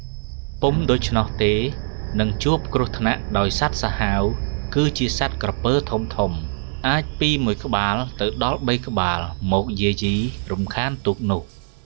ពុំដូច្នោះទេនឹងជួបគ្រោះថ្នាក់ដោយសត្វសាហាវគឺជាសត្វក្រពើធំអាចពី1ក្បាលទៅដល់3ក្បាលមកយាយីរំខានទូកនោះ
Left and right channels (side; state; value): left; silent; 57 dB below the other